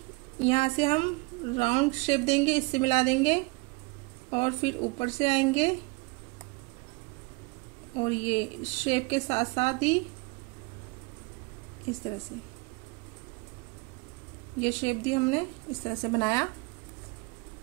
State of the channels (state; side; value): quieter; left; 27.4 dB